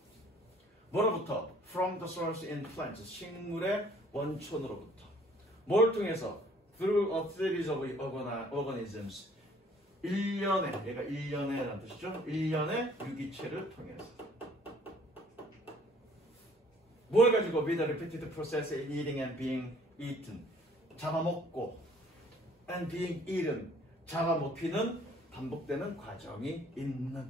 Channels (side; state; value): both; normal; correlation 0.58